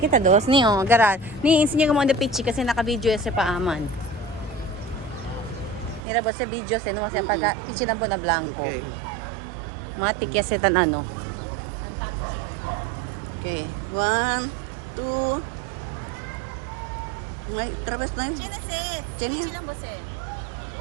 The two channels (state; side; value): drops out; left; at 6.0 s